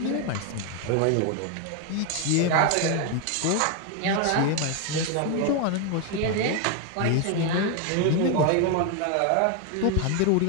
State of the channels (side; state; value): both; different; correlation 0.01